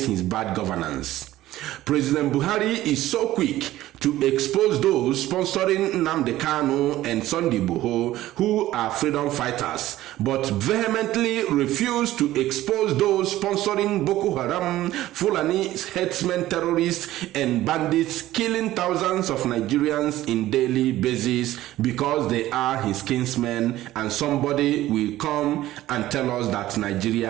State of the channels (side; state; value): left; quieter; 15.1 dB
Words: his bad governance. President Buhari is so quick to expose those sponsoring Nnamdi Kanu and Igboho who are freedom fighters, but vehemently refuse to expose those sponsoring Boko Haram, Fulani headsmen, terrorists, and bandits killing thousands of Nigerians in daily basis because they are his kinsmen, and somebody will come and tell us that